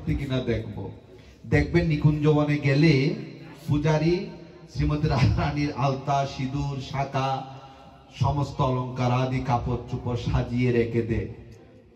কিনা দেখব। দেখবেন নিকুঞ্জবনে গেলে পূজারী শ্রীমতী রাধারানীর আলতা, সিঁদুর, শাঁখা, সমস্ত অলঙ্কার আদি কাপড় চোপড় সাজিয়ে রেখে দেয়,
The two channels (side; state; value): both; identical; correlation 1.00